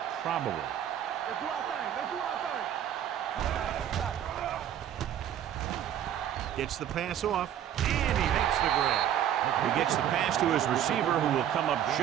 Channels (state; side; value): quieter; left; 10.4 dB